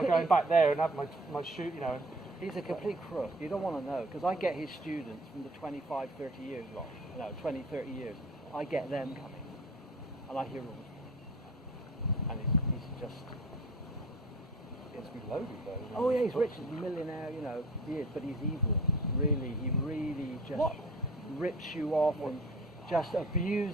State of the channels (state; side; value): normal; both; correlation 0.45